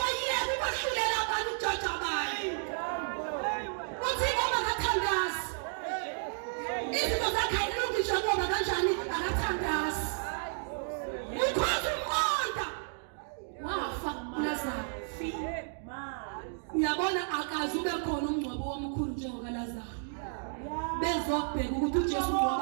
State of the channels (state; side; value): silent; left; digital silence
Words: ukwahlulela abantu ujaja bayi uthi ngoba akathandazi izinto zakhe ayilungisha ngoba kanjani akathandazi ukhoza umqondo wafa uLazaro uyabona akazi ube khona umngcwabo omkhulu njengoka Lazaro bezobheka ukuthi uJesu